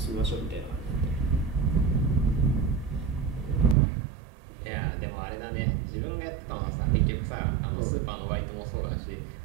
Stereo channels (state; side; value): drops out; left; at 3.8 s